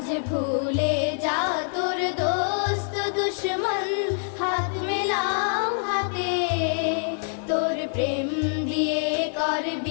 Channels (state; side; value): silent; right; digital silence